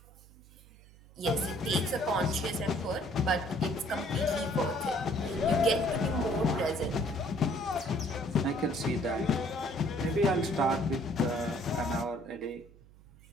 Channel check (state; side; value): noise; right; hum, 23 dB below the sound